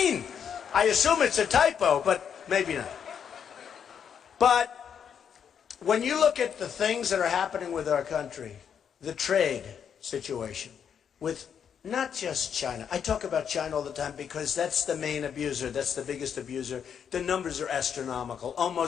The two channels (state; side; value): quieter; right; 7.8 dB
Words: I assume it's a typo, but maybe not. But when you look at the things that are happening with our country, the trade situation with not just China. I talk about China all the time because that's the main abuser. That's the biggest abuser. The numbers are astronomical.